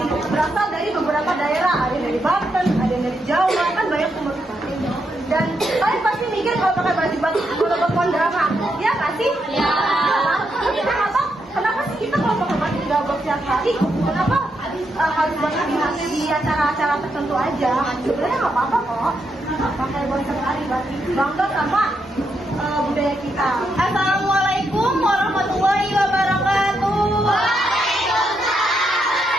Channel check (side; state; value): both; normal; correlation 0.81